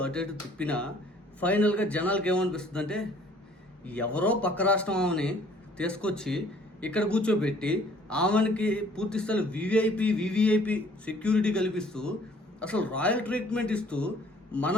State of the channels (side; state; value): both; normal; correlation 0.57